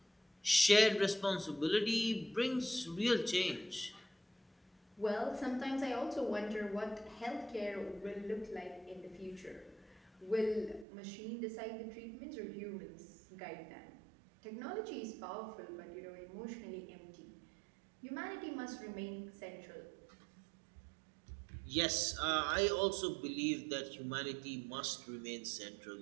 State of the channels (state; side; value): drops out; left; at 10.9 s